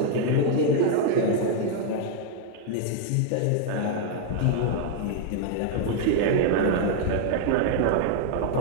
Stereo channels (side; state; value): both; different; correlation 0.00